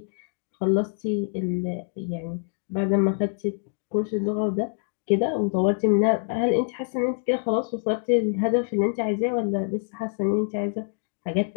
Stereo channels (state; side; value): silent; right; digital silence